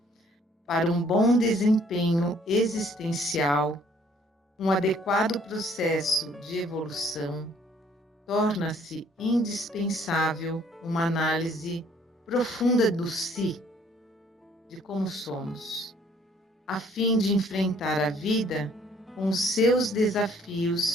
para um bom desempenho existencial, um adequado processo de evolução, torna-se indispensável uma análise profunda do si, de como somos, a fim de enfrentar a vida com os seus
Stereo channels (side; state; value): both; normal; correlation 0.60